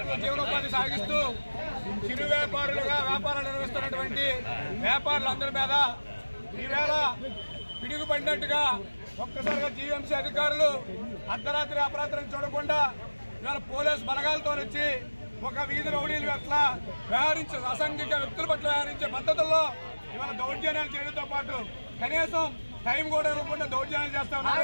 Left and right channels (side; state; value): both; inverted; correlation -1.00